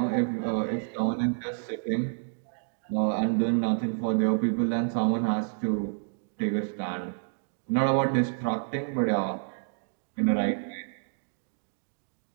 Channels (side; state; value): left; silent; digital silence